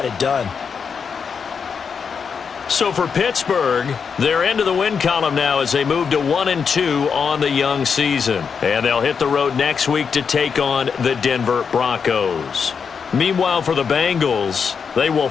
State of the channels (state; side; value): quieter; right; 6.2 dB